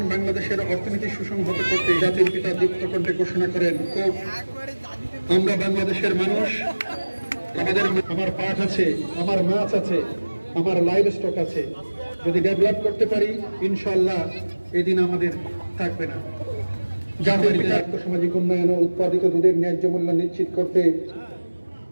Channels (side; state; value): both; inverted; correlation -1.00